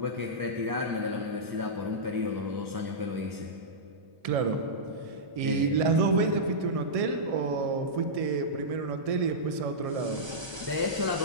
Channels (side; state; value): left; late; 1.3 ms